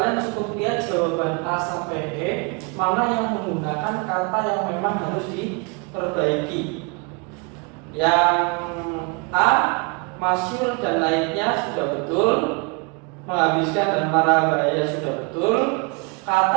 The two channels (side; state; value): left; quieter; 31.7 dB